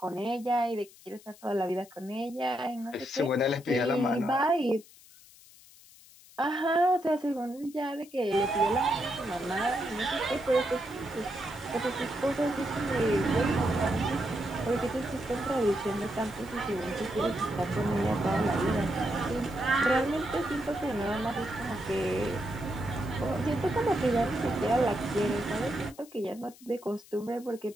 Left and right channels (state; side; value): noise; left; hiss, 23 dB below the sound